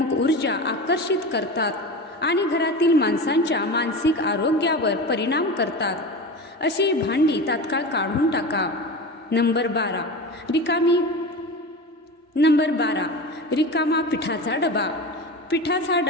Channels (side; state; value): both; normal; correlation 0.28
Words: ऊर्जा आकर्षित करतात आणि घरातील माणसांच्या मानसिक आरोग्यावर परिणाम करतात. अशी भांडी तात्काळ काढून टाका. नंबर 12. रिकामा पिठाचा डबा. पिठाचा